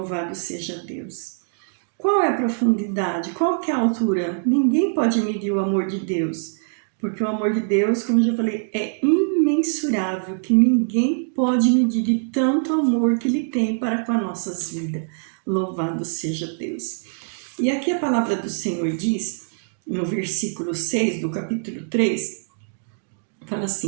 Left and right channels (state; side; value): silent; left; digital silence